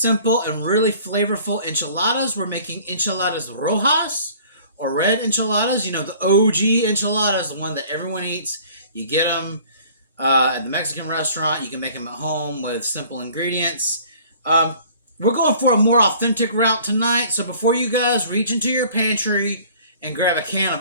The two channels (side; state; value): both; inverted; correlation -0.51